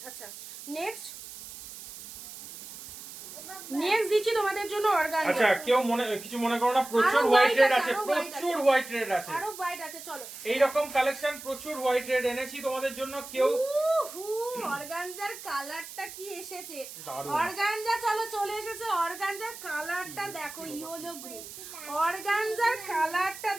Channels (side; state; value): right; noise; hiss, 13 dB below the sound